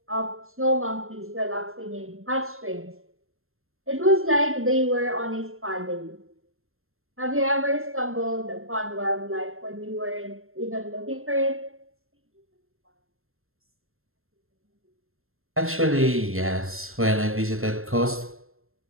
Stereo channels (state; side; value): late; left; 0.62 ms